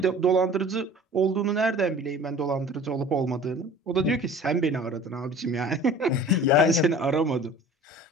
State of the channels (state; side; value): normal; both; correlation 0.44